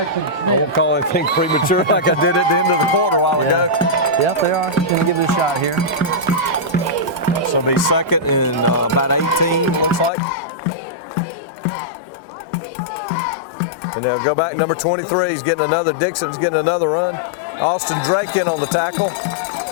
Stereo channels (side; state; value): right; drops out; at 10.1 s